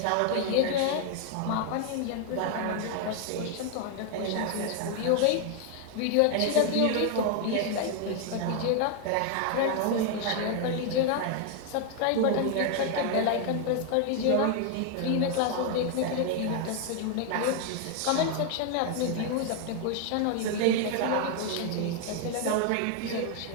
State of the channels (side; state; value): both; different; correlation 0.00